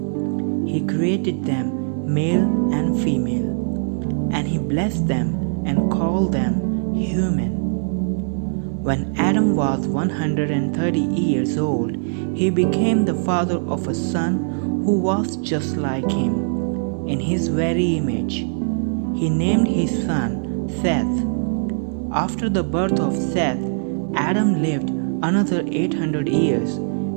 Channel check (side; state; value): left; silent; 59 dB below the other